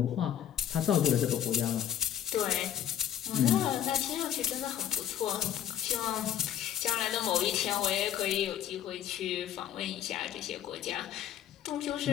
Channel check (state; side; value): quieter; right; 10.2 dB